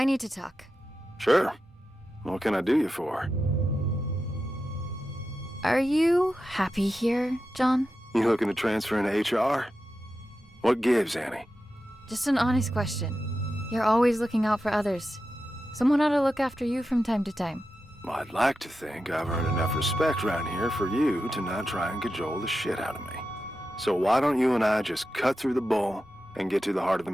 need to talk. Sure. What can I do you for? Are you happy here, John? You looking to transfer into HR? What gives, Annie? Just an honest question. You're always looking out for others. Someone ought to look after you from time to time. Well, I'd like to think I've earned enough respect around here for you to not try and cajole the shit out of me. So why don't you and I just cut through the bull and get to the heart of the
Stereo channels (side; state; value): both; normal; correlation 0.90